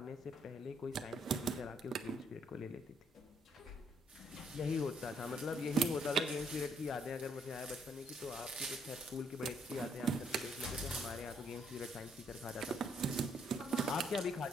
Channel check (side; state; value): both; normal; correlation 0.71